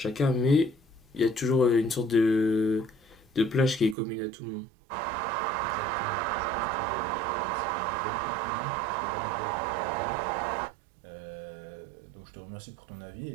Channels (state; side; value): drops out; left; at 4.0 s